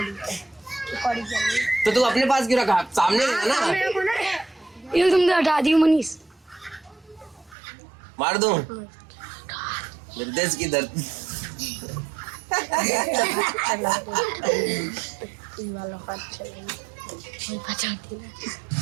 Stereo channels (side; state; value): left; drops out; at 7.6 s